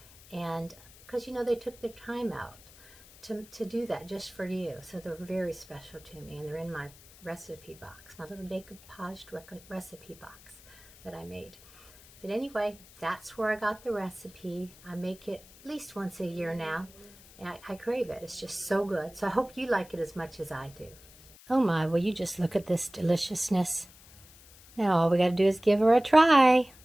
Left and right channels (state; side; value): noise; left; hiss, 22 dB below the sound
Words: And because, you know, they took their time out to do that just for you. So they're very special to me, and they're in my recipe box, my little decoupaged recipe box that I made. But anyway, that's where I got the recipe. I make it at least once a year now, and I crave it. It's just so good. So I hope you like it as much as I do. Oh my, will you just look at this deliciousness? Now all we got to do is give her a try.